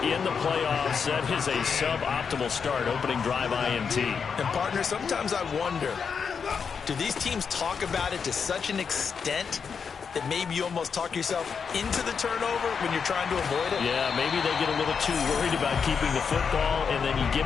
in the playoffs. That is a suboptimal start, opening drive INT. And, partner, sometimes I wonder, do these teams talk about it to such an extent that maybe you almost talk yourself into the turnover when you're trying to avoid it? Yeah, maybe they get a little too worried about keeping the football, and then you give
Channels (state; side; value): quieter; right; 6.2 dB